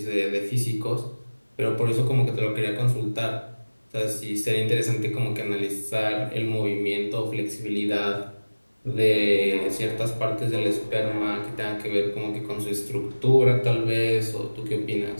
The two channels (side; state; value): both; inverted; correlation -1.00